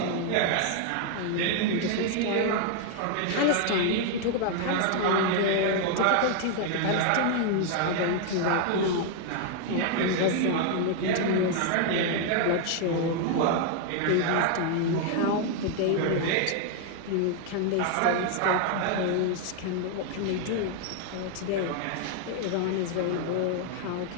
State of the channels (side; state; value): both; different; correlation 0.00